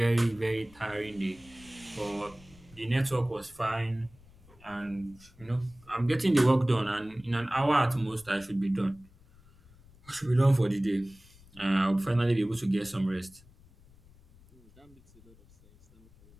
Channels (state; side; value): noise; left; rumble, 26 dB below the sound